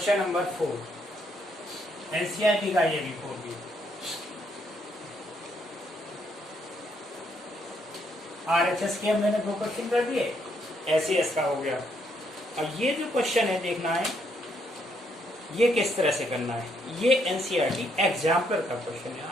नंबर 4, एनसीईआरटी का ये भी 4 भी। आरएचएस के मैंने 2 क्वेश्चन कर दिए, एसएएस का हो गया। और ये जो क्वेश्चन है देखना है ये किस तरह से करना है, ये एनसीईआरटी एग्जाम्पल का क्वेश्चन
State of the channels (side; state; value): both; normal; correlation 0.73